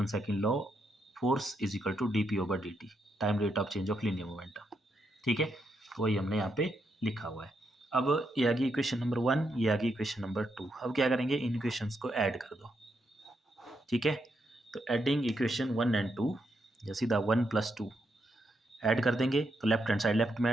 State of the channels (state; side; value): normal; both; correlation 0.80